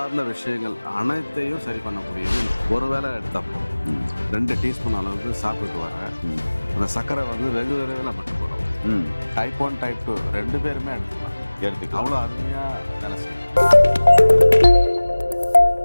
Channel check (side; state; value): both; inverted; correlation -1.00